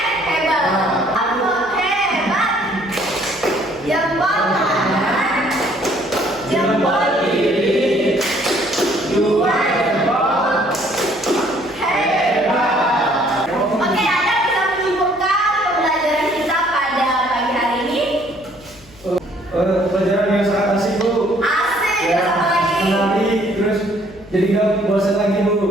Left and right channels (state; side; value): noise; left; hum, 25 dB below the sound